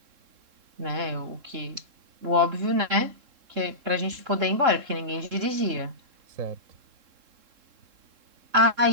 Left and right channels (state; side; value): late; left; 3.7 ms